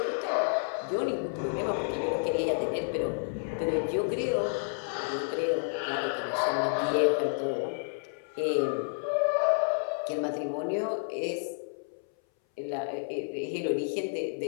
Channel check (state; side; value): silent; right; 58 dB below the other